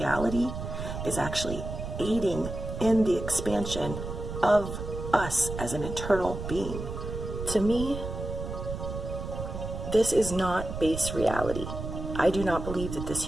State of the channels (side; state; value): right; noise; rumble, 7 dB below the sound